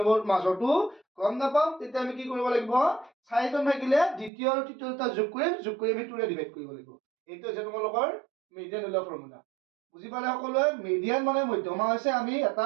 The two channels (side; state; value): left; drops out; at 4.3 s